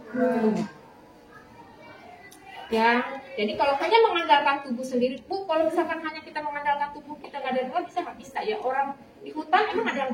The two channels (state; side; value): identical; both; correlation 1.00